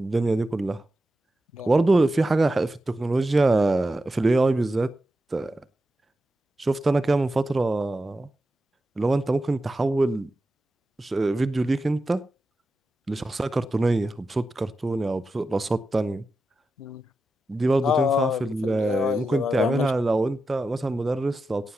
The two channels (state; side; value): normal; both; correlation 0.91